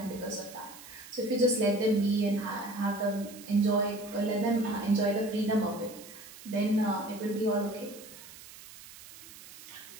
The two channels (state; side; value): noise; right; hiss, 17 dB below the sound